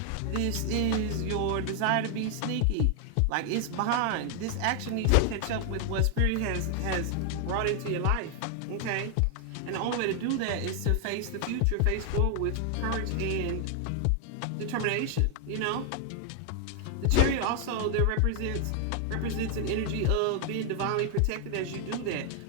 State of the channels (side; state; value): both; different; correlation 0.00